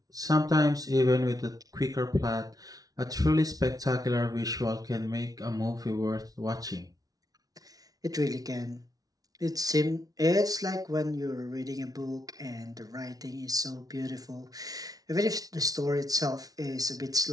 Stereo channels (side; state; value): left; late; 0.18 ms